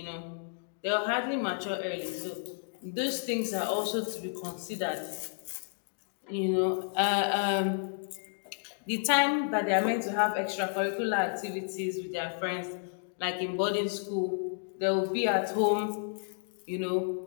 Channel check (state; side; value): silent; right; digital silence